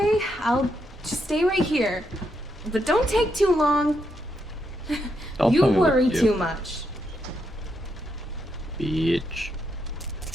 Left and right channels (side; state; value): both; normal; correlation 0.80